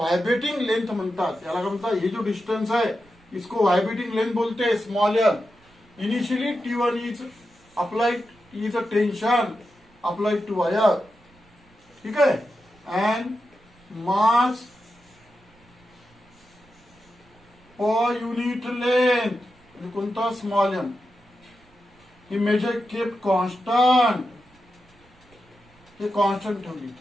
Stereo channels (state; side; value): noise; right; rumble, 30 dB below the sound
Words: लेंथ म्हणतात। याला काय म्हणतात? हे जो डिस्टन्स आहे इसको व्हायब्रेटिंग लेंथ बोलते हैं, small L. Initially T1 is applied, is a tension applied to wire, ठीक है, and mass per unit length कोणता? Small M. ही मेजर केप कॉन्स्टंट, हे कॉन्स्टंट ठेवली।